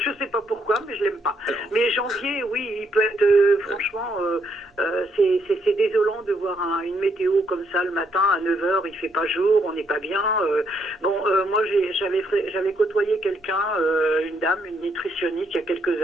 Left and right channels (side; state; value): both; normal; correlation 0.74